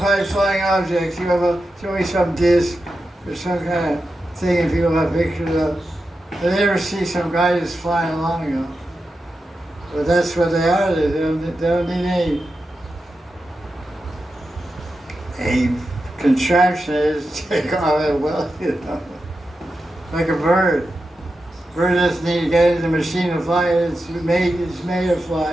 flying objects, UFO, it's always some disc or some kind of thing that people have pictures of. But they never see some guy just flying along, you know. But that's what they are. They don't need any contraption is take off at will, you know. Like a bird. Bird doesn't need to get in the machine to fly. It's made to fly.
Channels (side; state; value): both; normal; correlation 0.90